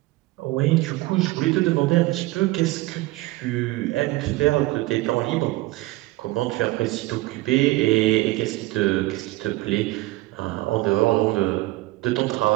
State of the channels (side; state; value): left; quieter; 19.4 dB